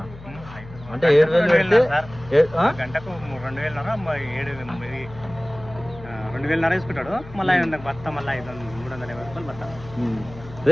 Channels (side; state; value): left; noise; hum, 16 dB below the sound